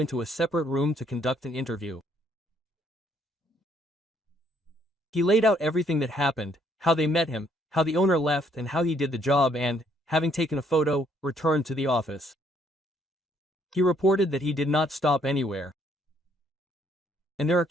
a separate room to conduct an interview. He laid out everything that happened, how they met him, how the owner left, and how he did the job, and, having taken a photo, returned to the office. He reported that he did not stop anywhere. And there are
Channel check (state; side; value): normal; both; correlation 0.67